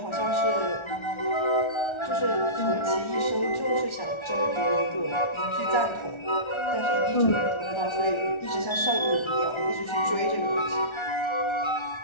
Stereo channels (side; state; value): right; late; 1.4 ms